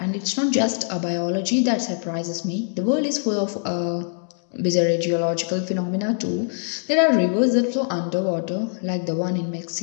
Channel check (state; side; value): silent; right; digital silence